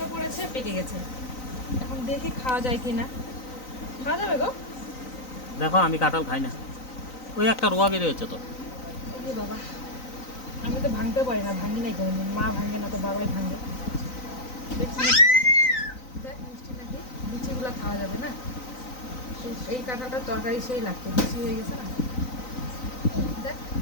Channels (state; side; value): late; right; 3.9 ms